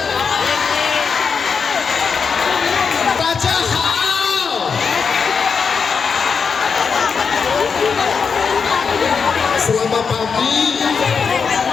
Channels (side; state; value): right; quieter; 5.8 dB